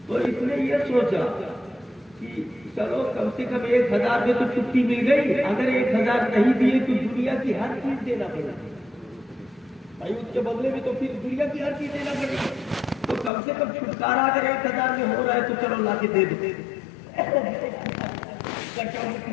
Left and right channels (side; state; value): right; drops out; at 13.3 s